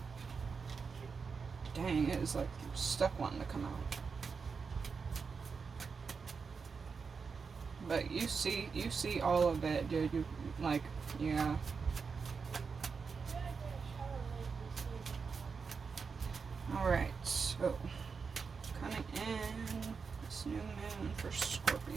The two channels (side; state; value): left; quieter; 5.3 dB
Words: Dang, it is like stuck wanting to come out. But you see all of it, dude. You like, yeah. Alright, so coming in this new moon for